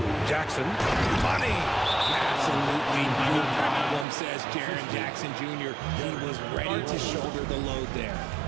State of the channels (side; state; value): left; drops out; at 4.0 s